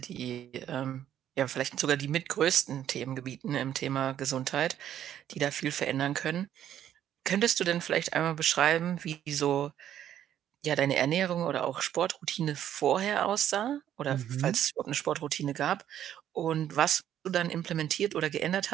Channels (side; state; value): left; quieter; 10.8 dB